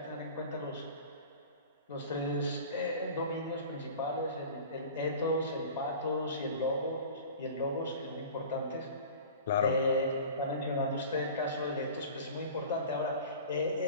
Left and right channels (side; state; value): both; inverted; correlation -0.39